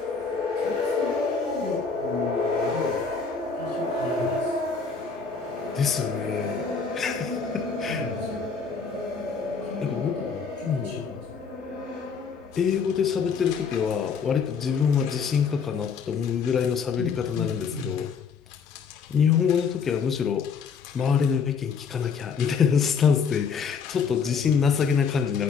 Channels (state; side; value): quieter; right; 5.7 dB